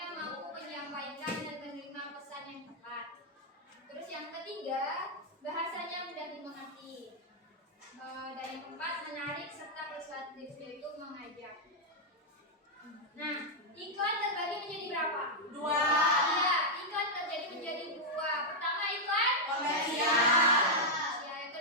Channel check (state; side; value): normal; both; correlation -0.03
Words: mampu menyampaikan dan menerima pesan yang tepat. Terus yang ketiga, bahasanya mudah dimengerti. Dan yang keempat, menarik serta persuasif, yaitu mengajak. Nah, iklan terbagi menjadi berapa? 2. Iya, iklan terbagi menjadi 2. Pertama, iklan komersial. Ya, yang